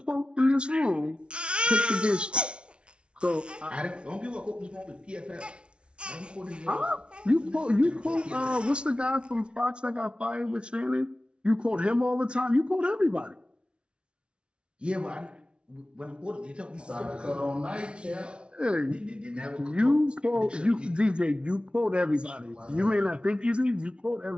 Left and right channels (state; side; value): late; left; 0.058 ms